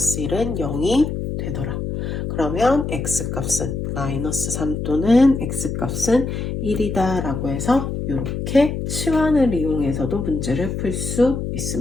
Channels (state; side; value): noise; left; hum, 4 dB below the sound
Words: 0이 되더라. 그러면 X값은 마이너스 3 또는 X값은 1이다 라고 해서 이렇게 치환을 이용해서도 문제를 풀 수